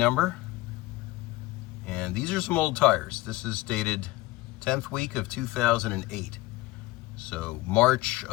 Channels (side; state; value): right; quieter; 19.4 dB